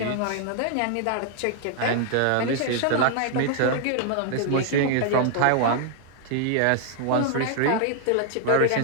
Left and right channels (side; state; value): both; different; correlation 0.00